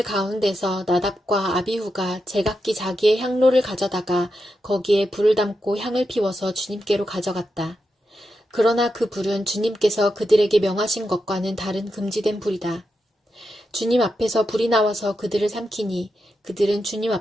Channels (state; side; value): normal; both; correlation 0.87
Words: 가운데서 나답과 아비후가 제각기 자기의 향로를 가져다가 거기에 불을 담고 향을 피워서 주님께로 가져갔다. 그러나 그 불은 주님께서 그들에게 명하신 것과는 다른 금지된 불이다. 주님 앞에서 불이 나와서 그들을 삼키니 그들은 주님